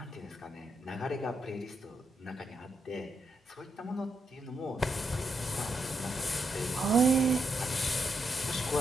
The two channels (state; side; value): normal; both; correlation 0.81